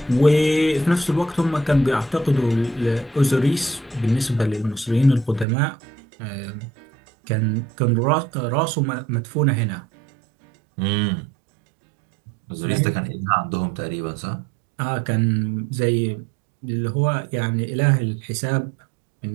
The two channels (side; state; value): left; drops out; at 5.5 s